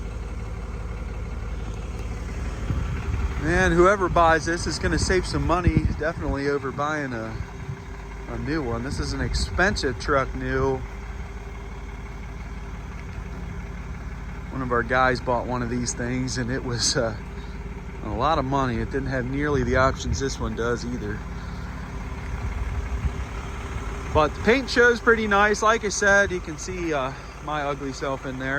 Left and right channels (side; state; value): both; identical; correlation 1.00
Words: And whoever buys this is going to save some money, definitely, over buying a new one. This is an expensive truck new. One of our guys bought one of these things, and it was a lot of money. It didn't have nearly the options this one does either. But the paint shows pretty nice. Like I said, you can see my ugly self in